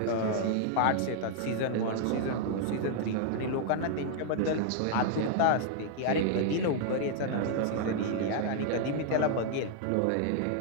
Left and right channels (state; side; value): different; both; correlation -0.01